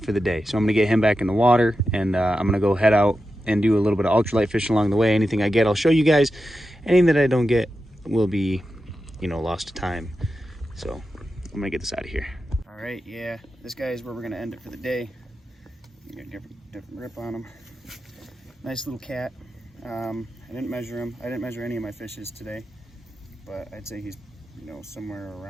for the day. So I'm gonna get him back in the water, and I'm gonna go head out and do a little bit of ultralight fishing along the way. Anything I get, I'll show you guys. Anything that I don't get will be, you know, lost to time. So I'm gonna get this out of here. All right, yeah, this guy is where we're gonna end it for the day. You got a different grip on him. Nice little cat. I didn't measure him. I didn't measure any of my fishes today, but I'd say he's, you know, somewhere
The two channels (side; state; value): both; normal; correlation 0.90